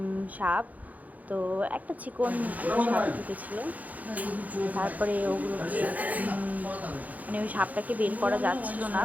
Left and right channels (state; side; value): late; left; 0.078 ms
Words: সাপ। তো একটা চিকন সাপ ঢুকেছিল, তারপরে ওগুলো মানে ওই সাপটাকে বের করা যাচ্ছিল না,